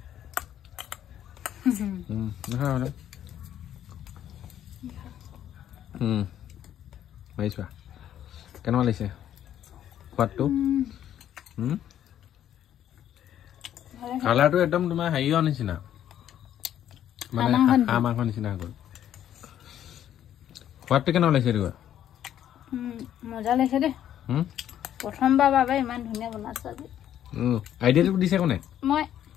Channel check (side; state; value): right; quieter; 10.9 dB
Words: পাৰিছোৱা কেনেকুৱা লাগিছে সোৱাদটো কালাৰটো একদম তোমাৰ হেৰিৰ নিচিনা মানে হাঁহ মাংস নিচিনা হৈ গ'ল সোৱাদটো কেনেকুৱা লাগিছে এইটো মজা লাগিছে দেই প্ৰথমবাৰ বাবে ইমান ধুনীয়া বনাইছো আজি আইডিয়াটো দিছে কোনে মই